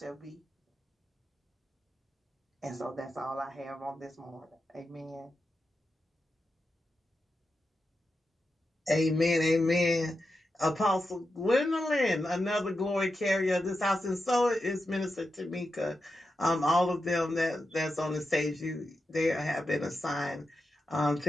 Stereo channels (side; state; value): both; normal; correlation 0.89